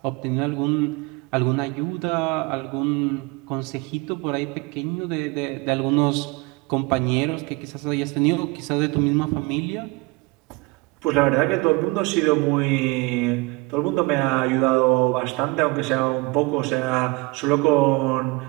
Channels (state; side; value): quieter; left; 24.6 dB